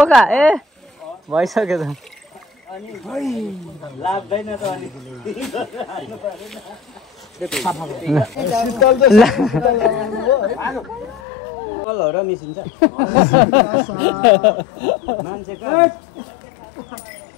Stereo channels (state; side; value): drops out; right; at 11.2 s